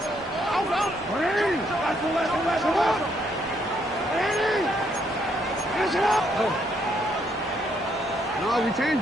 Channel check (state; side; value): normal; both; correlation 0.72